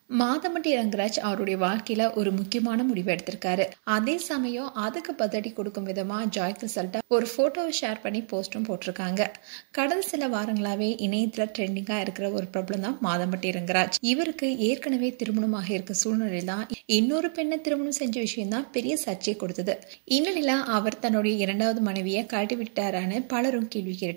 மாதம்பட்டி ரங்கராஜ் அவருடைய வாழ்க்கையில ஒரு முக்கியமான முடிவு எடுத்திருக்காரு. அதே சமயம் அதுக்கு பதிலடி கொடுக்கும் விதமா ஜாய் கிறிசல்டா ஒரு போட்டோவை ஷேர் பண்ணி போஸ்டும் போட்டிருக்காங்க. கடந்த சில வாரங்களாவே இணையத்துல ட்ரெண்டிங்கா இருக்கிற ஒரு பிரபலம் தான் மாதம்பட்டி ரங்கராஜ். இவருக்கு ஏற்கனவே திருமணமாக இருக்க சூழ்நிலை தான் இன்னொரு பெண்ணை திருமணம் செஞ்ச விஷயம் தான் பெரிய சர்ச்சை கொடுத்தது. இந்நிலையில அவர் தன்னுடைய இரண்டாவது மனைவியை கழட்டி விட்டாரான்னு பலரும் கேள்வி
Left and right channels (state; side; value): silent; left; 60 dB below the other